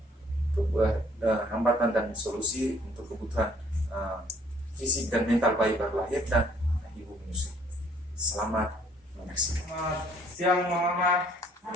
hambatan dan solusi untuk kebutuhan fisik dan mental bayi baru lahir dan ibu menyusui. Selamat menyaksikan. Selamat siang Mama.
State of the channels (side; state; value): both; normal; correlation 0.61